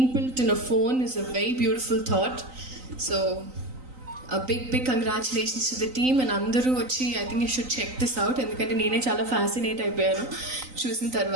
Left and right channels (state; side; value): late; left; 3.9 ms